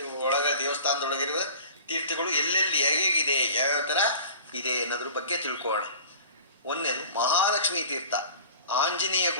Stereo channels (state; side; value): inverted; both; correlation -0.43